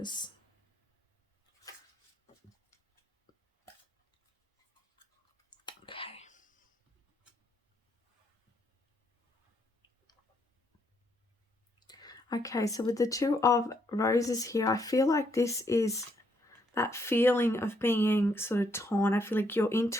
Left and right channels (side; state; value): both; normal; correlation 0.74